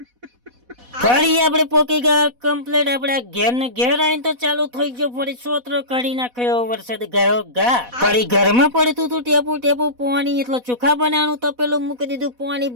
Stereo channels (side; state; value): left; late; 4.1 ms